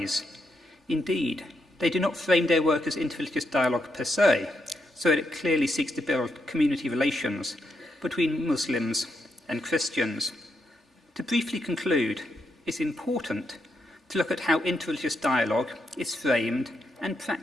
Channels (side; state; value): both; normal; correlation 0.81